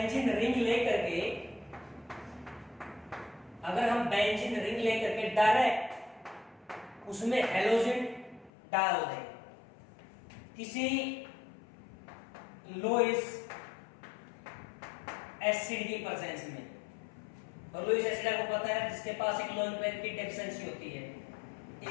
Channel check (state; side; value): drops out; right; at 8.5 s